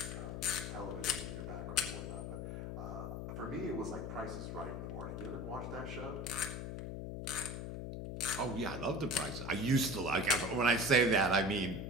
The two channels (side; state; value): left; noise; hum, 5 dB below the sound